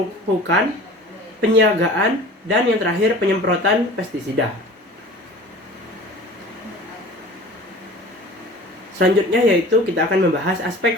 penyiagaan, dan yang terakhir penyemprotan pestisida. Selanjutnya yaitu kita akan membahas aspek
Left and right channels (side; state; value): both; normal; correlation 0.42